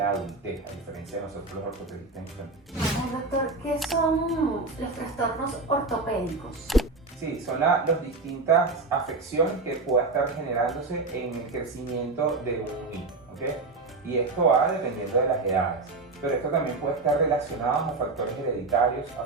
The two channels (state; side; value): quieter; left; 3.6 dB